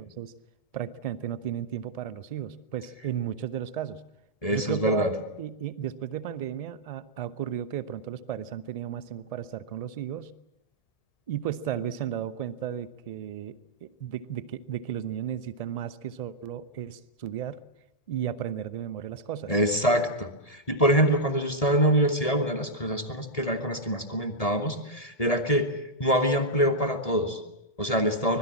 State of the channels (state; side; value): late; right; 1.7 ms